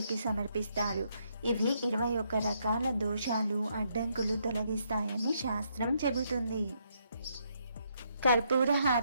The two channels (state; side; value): inverted; both; correlation -0.74